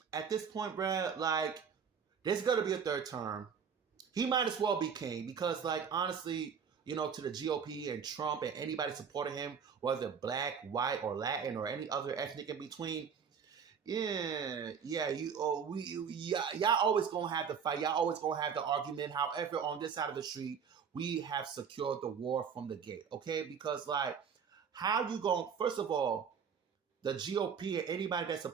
this point, bruh, like, there's gonna be a third term. He might as well be king because, like, honestly, to the GOP and Trump and anybody supporting him, whether black, white, or Latin or any other ethnic in between, y'all always gonna have the fight. Y'all always gonna have the argument. However, on this side of the street, we have secured the war from the gate, okay? Because, like, how you going? First of all, the GOP and anybody that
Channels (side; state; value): left; quieter; 6.8 dB